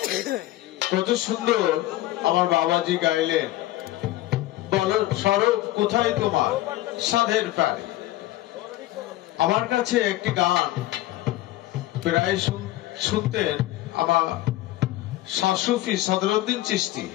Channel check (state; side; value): quieter; right; 16.2 dB